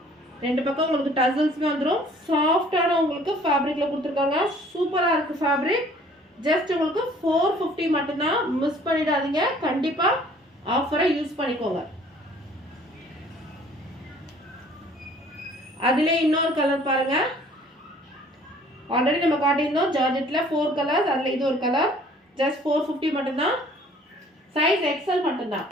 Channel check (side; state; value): both; normal; correlation 0.55